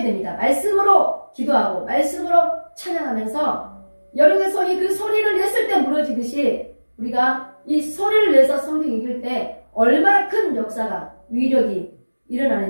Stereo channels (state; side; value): inverted; both; correlation -1.00